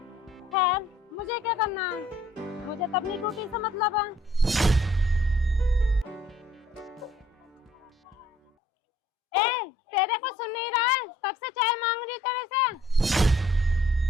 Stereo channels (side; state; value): both; normal; correlation 0.59